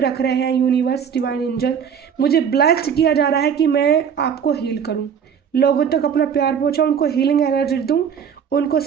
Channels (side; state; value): left; quieter; 7.6 dB